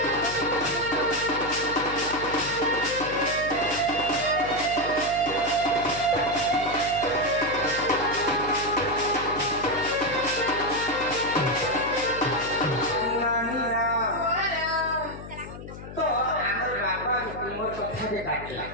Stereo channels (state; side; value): noise; left; hum, 13 dB below the sound